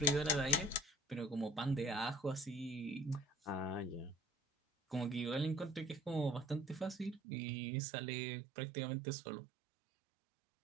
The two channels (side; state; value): left; drops out; at 7.2 s